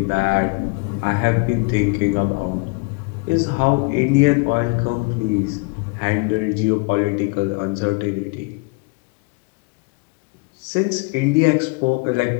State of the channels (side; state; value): right; quieter; 29.5 dB